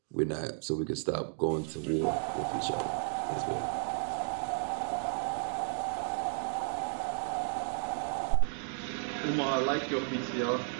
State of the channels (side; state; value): left; silent; 56 dB below the other